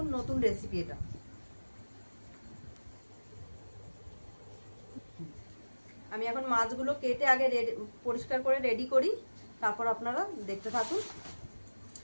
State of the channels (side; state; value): both; inverted; correlation -1.00